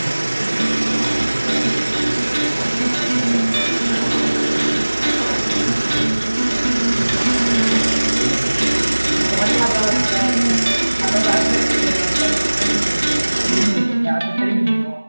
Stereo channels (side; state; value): both; inverted; correlation -1.00